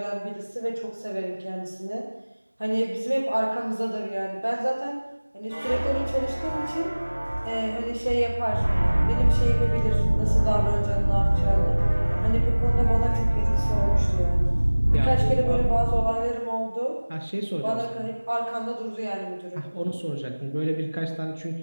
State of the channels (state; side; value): inverted; both; correlation -1.00